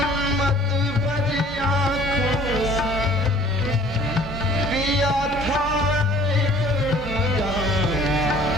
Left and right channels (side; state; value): both; normal; correlation 0.52